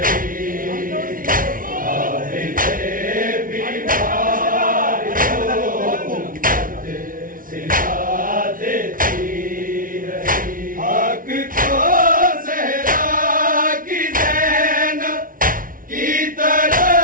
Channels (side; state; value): left; late; 0.40 ms